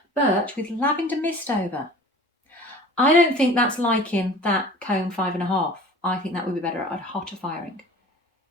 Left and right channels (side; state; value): both; normal; correlation 0.43